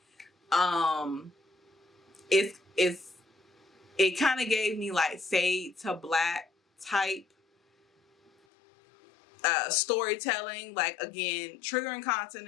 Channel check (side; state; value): right; drops out; at 8.3 s